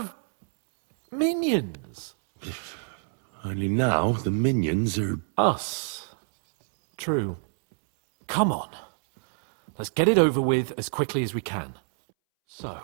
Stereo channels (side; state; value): left; silent; 61 dB below the other